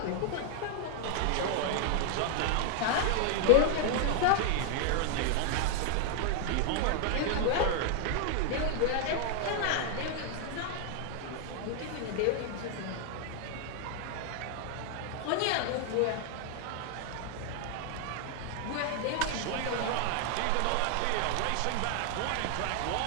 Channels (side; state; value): both; different; correlation 0.00